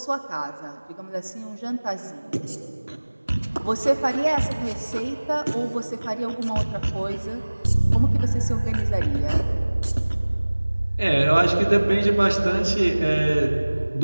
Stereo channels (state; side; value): inverted; both; correlation -1.00